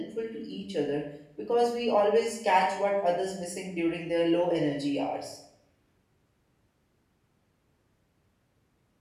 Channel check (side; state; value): both; identical; correlation 1.00